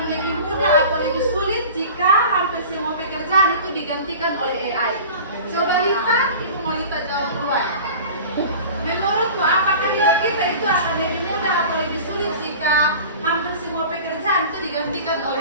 lebih mudah atau lebih sulit jika hampir semua pekerjaan itu digantikan oleh AI? Coba Lita, ibu mau Lita jawab duluan. Menurutmu, apakah hidup kita itu akan lebih mudah atau lebih sulit jika hampir semua pekerjaan itu digantikan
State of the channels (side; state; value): both; inverted; correlation -0.38